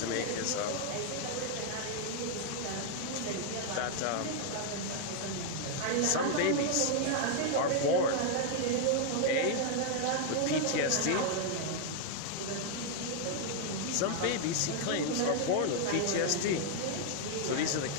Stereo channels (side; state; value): both; different; correlation 0.00